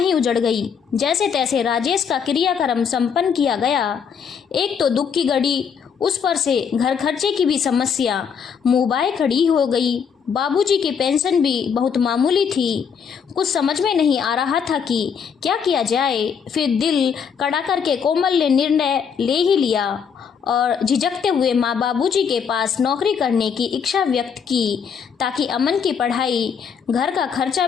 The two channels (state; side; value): quieter; right; 6.9 dB